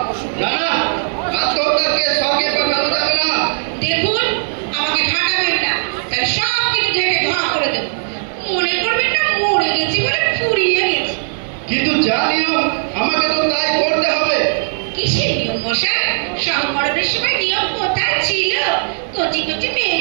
না না, আত্মহত্যার কেস স্বর্গে পাঠানো যাবে না। দেখুন আমাকে ঠাকাবেন না, তাহলে সব কিছু ঢেকে ধোয়া করে দেবো। মনে করবেন না মরে গেছি বলে ফুরিয়ে গেছি। কিন্তু যা নিয়ম আমাকে তো তাই করতে হবে। কিসের নিয়ম মশাই? সংকরণের সময় নিয়ম কোথায় ছিল? কচি কচি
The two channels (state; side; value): silent; left; digital silence